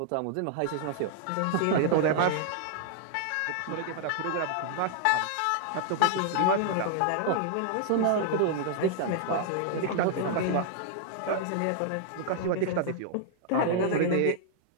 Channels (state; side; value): different; both; correlation -0.01